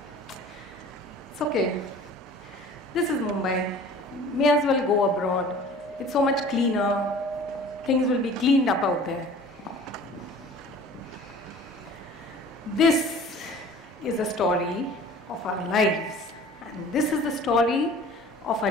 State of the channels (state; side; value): normal; both; correlation 0.45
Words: It's okay. This is Mumbai. May as well go abroad. It's so much cleaner. Things will be cleaned up out there. This is a story of our lives. And this is the story of